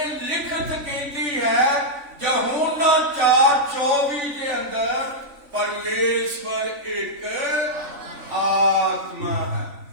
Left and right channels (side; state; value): left; late; 3.5 ms